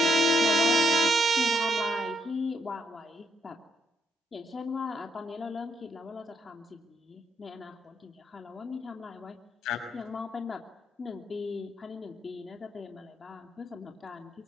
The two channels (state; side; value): normal; both; correlation 0.76